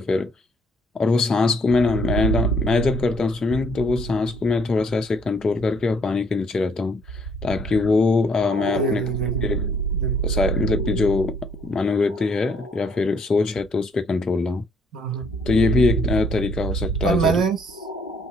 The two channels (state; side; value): normal; both; correlation 0.66